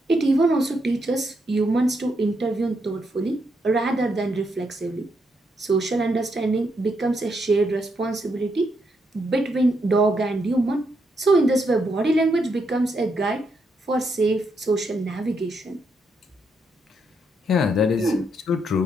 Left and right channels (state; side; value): normal; both; correlation 0.79